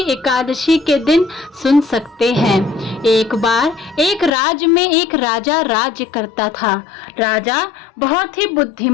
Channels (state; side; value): drops out; right; at 4.3 s